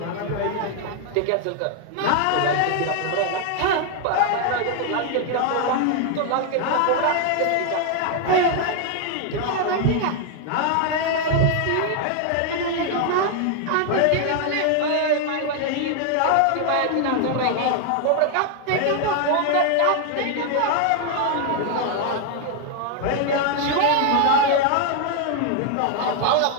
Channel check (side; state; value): both; different; correlation 0.00